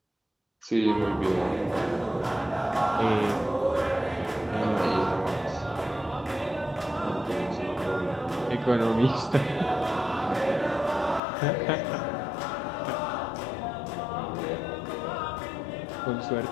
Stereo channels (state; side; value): drops out; right; at 11.2 s